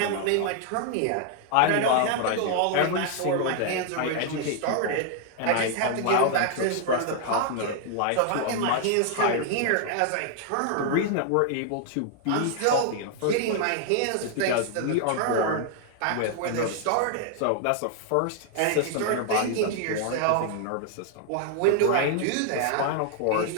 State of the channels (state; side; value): different; both; correlation 0.00